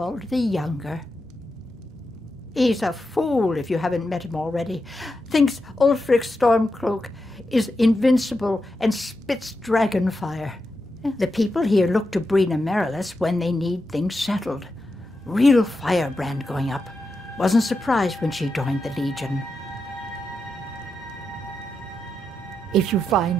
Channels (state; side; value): normal; both; correlation 0.87